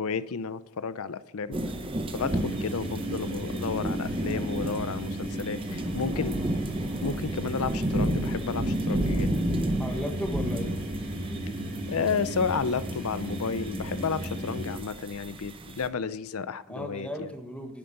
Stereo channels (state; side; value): normal; both; correlation 0.37